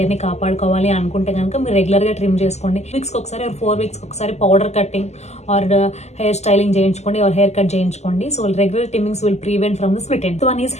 కాపాడుకోవాలి అనుకుంటే కనుక మీరు రెగ్యులర్గా ట్రిమ్ చేసుకోండి. వీక్స్కి ఒకసారి 4 వీక్స్కి ఒకసారి powder cutting or hair styling చేయించుకోండి ఆర్ హెయిర్ కట్ చేయించుకోండి. So regular trimmings will prevent from the split end. One is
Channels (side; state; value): right; late; 0.32 ms